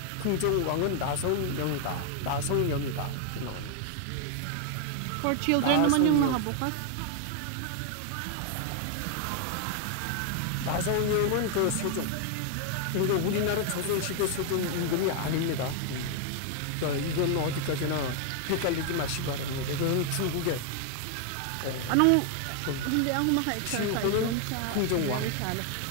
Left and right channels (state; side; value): different; both; correlation 0.00